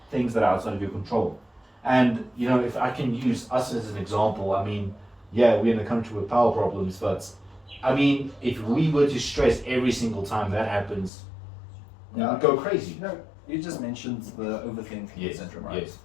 things that are outside of your control. And if I can use us as an example, we're in a country with power problems, but if we were to stress every single time that happens, we would go crazy. You just mentioned the overthinking syndrome, right? Yes.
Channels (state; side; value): drops out; right; at 11.1 s